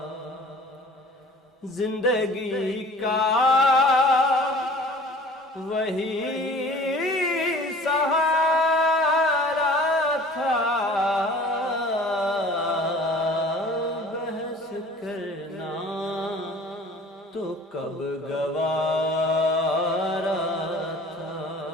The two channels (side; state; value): both; normal; correlation 0.47